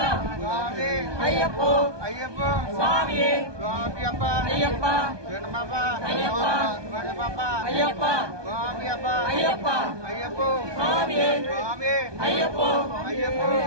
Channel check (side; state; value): left; late; 1.2 ms